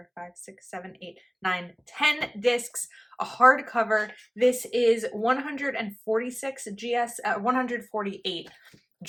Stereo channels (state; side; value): identical; both; correlation 1.00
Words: 5, 6, 7, 8, 9, 10 discs, a hardcover. This is 148